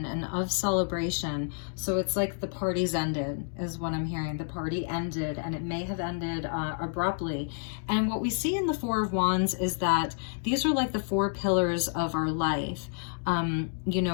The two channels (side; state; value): right; silent; digital silence